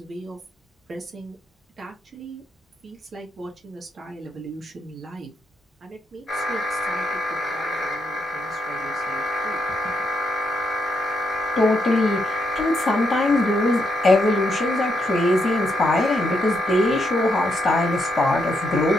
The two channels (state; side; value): normal; both; correlation 0.79